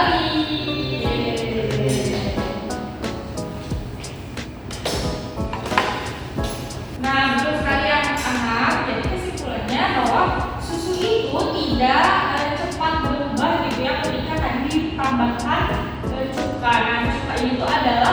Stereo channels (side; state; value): both; identical; correlation 1.00